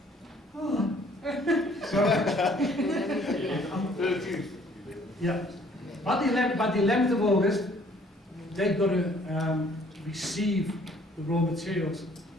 Oh. So, yeah. By the 11th of August, they've got to receive the raw materials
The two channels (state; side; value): normal; both; correlation 0.59